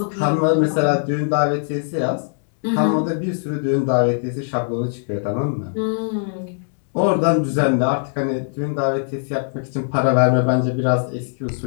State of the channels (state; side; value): silent; right; digital silence